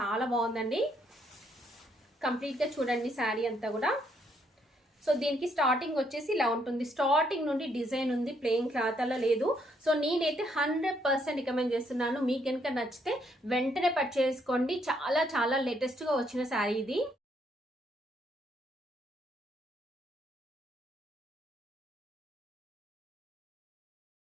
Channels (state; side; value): normal; both; correlation 0.72